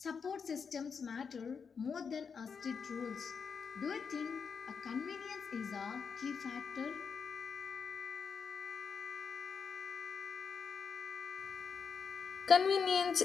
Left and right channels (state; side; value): quieter; right; 6.0 dB